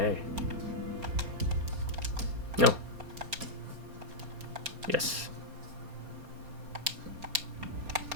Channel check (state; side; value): late; left; 4.3 ms